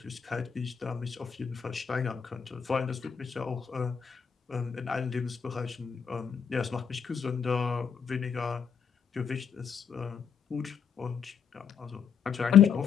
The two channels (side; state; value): right; quieter; 7.1 dB